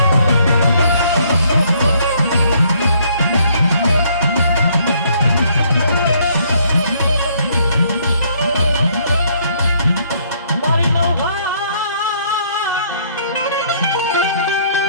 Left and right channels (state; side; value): inverted; both; correlation -0.66